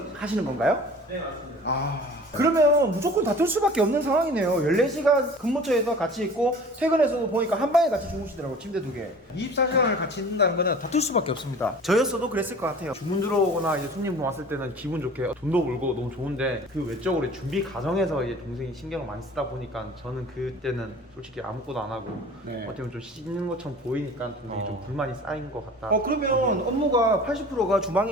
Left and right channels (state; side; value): normal; both; correlation 0.43